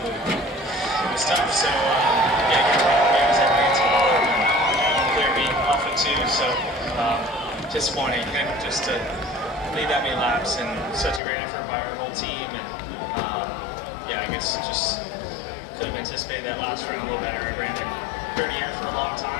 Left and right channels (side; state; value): right; drops out; at 11.2 s